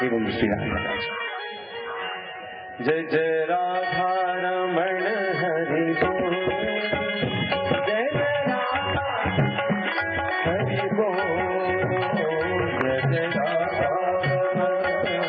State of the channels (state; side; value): identical; both; correlation 1.00